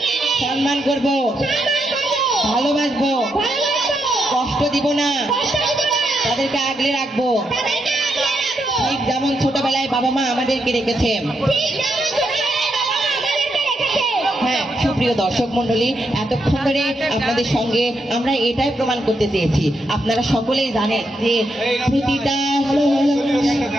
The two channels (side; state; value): both; normal; correlation 0.81